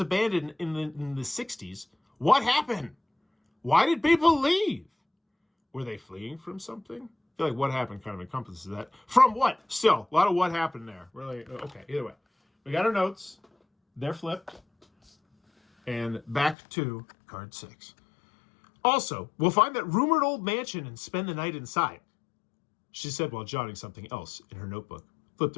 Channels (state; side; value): drops out; right; at 16.6 s